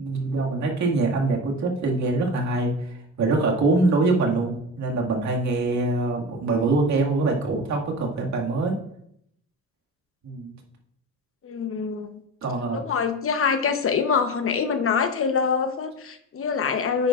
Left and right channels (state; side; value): normal; both; correlation 0.27